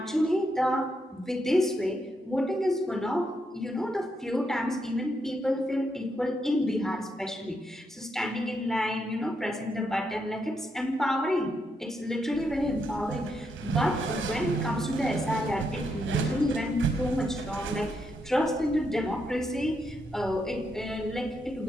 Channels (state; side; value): normal; both; correlation 0.80